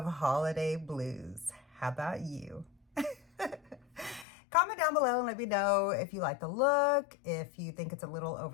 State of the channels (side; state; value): right; drops out; at 4.2 s